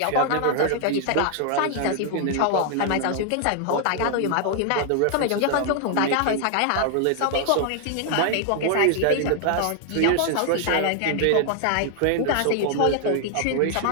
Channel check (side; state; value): both; different; correlation 0.00